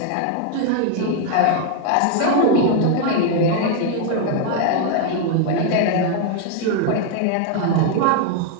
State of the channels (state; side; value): different; both; correlation 0.01